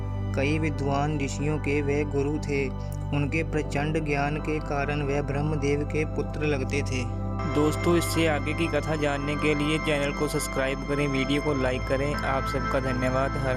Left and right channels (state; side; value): identical; both; correlation 1.00